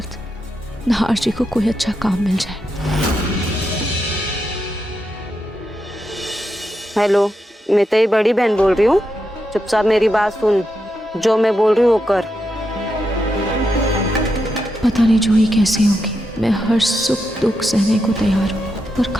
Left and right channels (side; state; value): both; normal; correlation 0.85